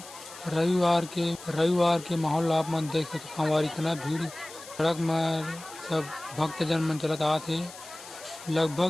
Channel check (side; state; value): left; noise; hiss, 16 dB below the sound